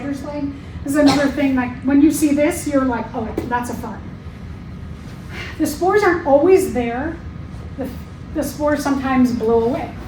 leg. This is another thing, like when you see this, you're like, oh, that's a fern. The spores aren't always there. The spores sometimes blow away.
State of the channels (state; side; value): identical; both; correlation 1.00